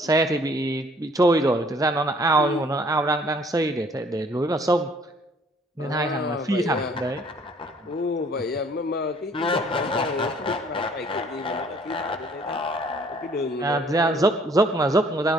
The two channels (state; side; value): normal; both; correlation 0.59